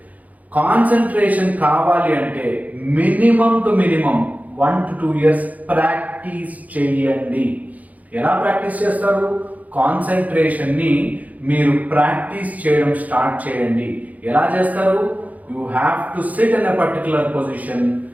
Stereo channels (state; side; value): late; left; 0.076 ms